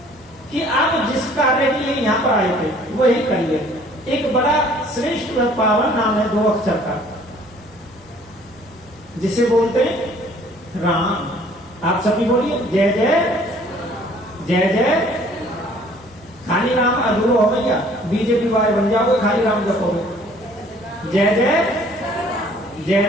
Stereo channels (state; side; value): normal; both; correlation 0.56